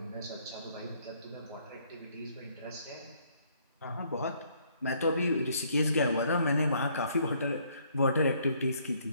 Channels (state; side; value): inverted; both; correlation -0.66